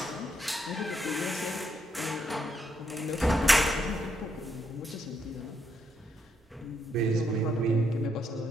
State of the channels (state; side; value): normal; both; correlation 0.77